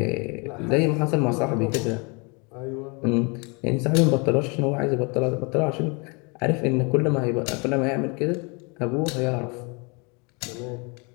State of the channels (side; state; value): right; quieter; 31.4 dB